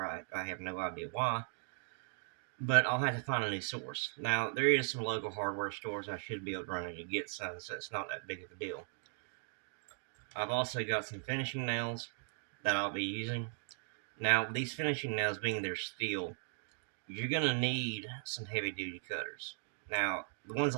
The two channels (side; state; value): left; silent; 52 dB below the other